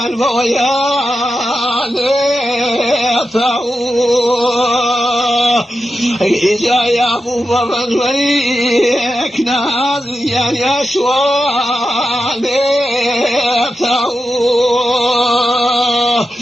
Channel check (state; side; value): normal; both; correlation 0.90